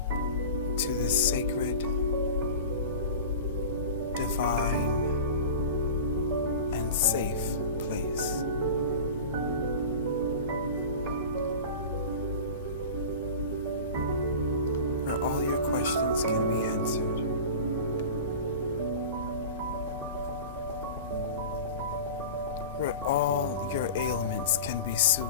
to this sacred, divine, and safe place. Where all your questions can be answered. Where all your ailments can be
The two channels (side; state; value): both; inverted; correlation -0.33